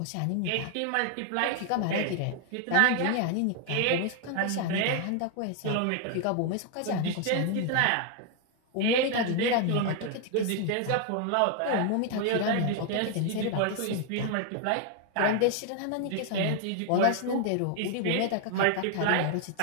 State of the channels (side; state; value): both; different; correlation 0.00